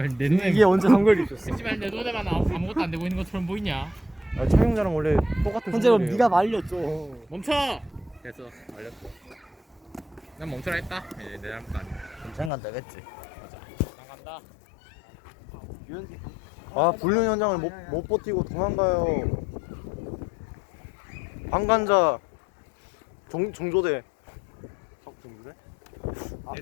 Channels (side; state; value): right; drops out; at 12.5 s